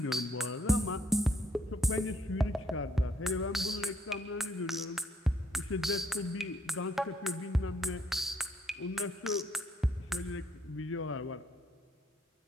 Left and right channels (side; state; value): both; normal; correlation 0.69